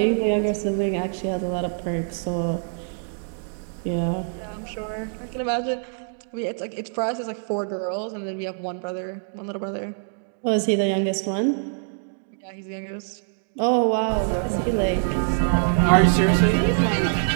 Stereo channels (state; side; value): silent; left; digital silence